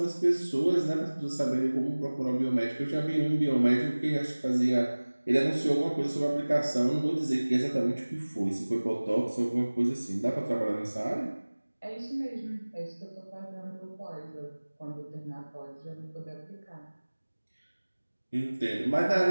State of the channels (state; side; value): inverted; both; correlation -1.00